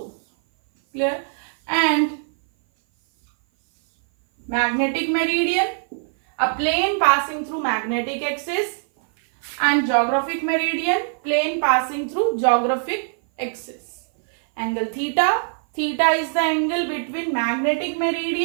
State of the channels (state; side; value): silent; left; 57 dB below the other